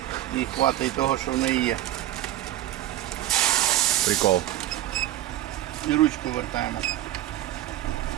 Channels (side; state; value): left; quieter; 13.9 dB